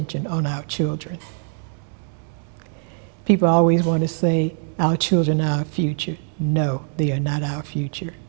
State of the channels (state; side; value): silent; left; digital silence